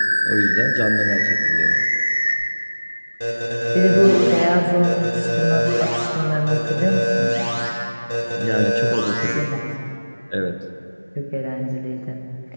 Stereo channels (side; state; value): both; inverted; correlation -1.00